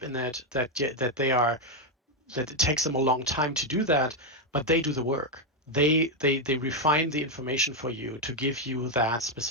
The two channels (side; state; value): both; normal; correlation 0.03